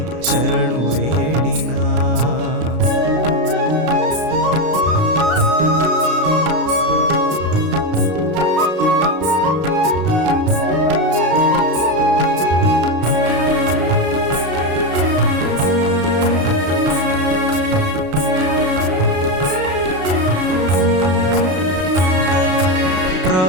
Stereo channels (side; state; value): left; late; 33 ms